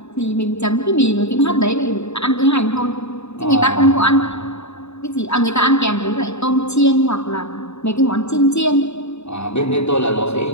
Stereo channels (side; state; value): right; late; 0.80 ms